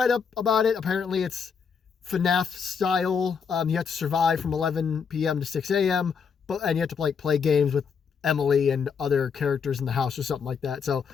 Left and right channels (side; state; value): right; quieter; 6.3 dB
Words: up about it. Apparently it's FNAF style. You have to survive from 11 p.m. to 6 a.m. And you have to play games with Emily and other characters in the house or something like that. So